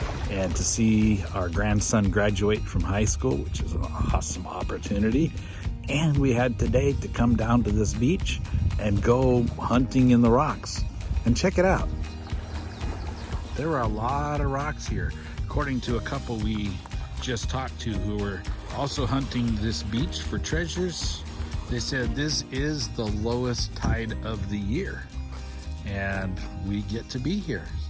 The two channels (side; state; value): both; identical; correlation 1.00